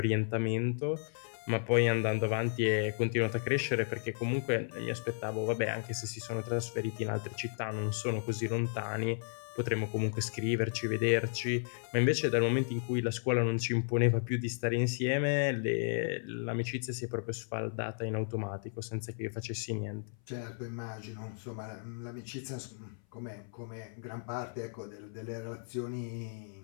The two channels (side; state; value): right; silent; 55 dB below the other